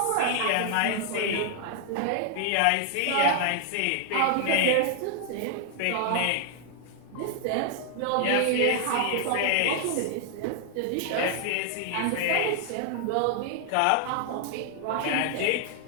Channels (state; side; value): different; both; correlation 0.00